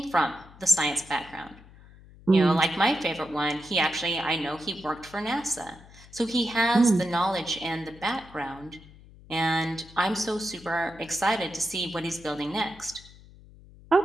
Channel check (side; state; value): left; noise; hum, 22 dB below the sound